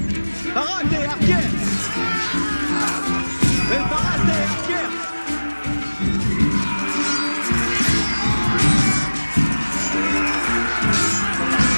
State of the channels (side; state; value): both; inverted; correlation -1.00